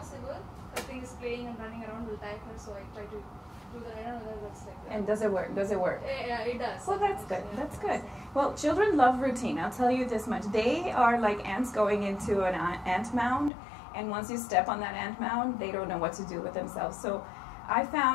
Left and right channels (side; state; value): right; drops out; at 13.5 s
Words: her thing is playing and running around will tire her, so I try to do that. I don't know whether that's like that. And does it work? Does it work? Yeah, it does. Well, that's good. Yeah. That's good. Well, children love routine. I'll tell you this much. They are like ants going into an ant mound, and once you step on that ant mound, they don't know what to do with themselves. So I